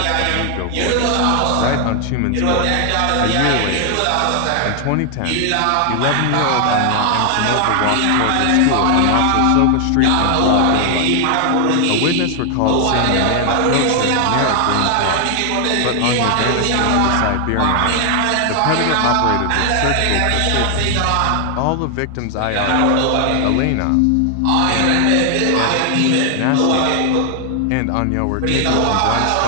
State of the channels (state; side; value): different; both; correlation 0.00